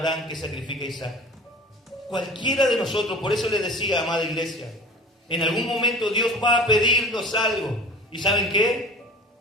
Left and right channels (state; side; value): normal; both; correlation 0.39